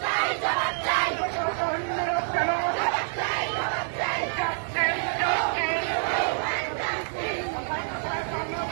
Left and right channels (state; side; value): silent; left; digital silence